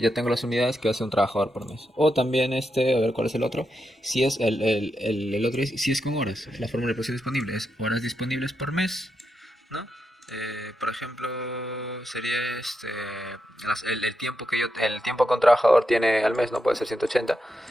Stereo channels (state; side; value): normal; both; correlation 0.85